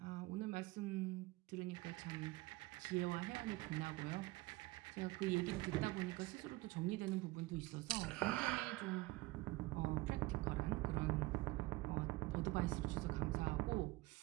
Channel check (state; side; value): quieter; left; 20.5 dB